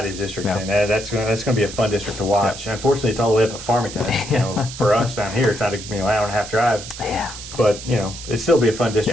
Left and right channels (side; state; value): right; noise; hiss, 12 dB below the sound